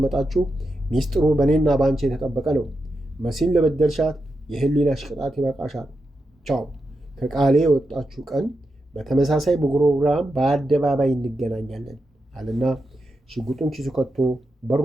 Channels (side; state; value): both; normal; correlation 0.87